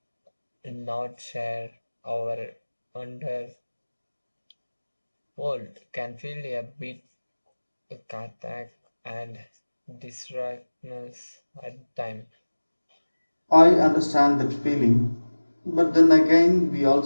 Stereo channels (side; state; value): both; inverted; correlation -1.00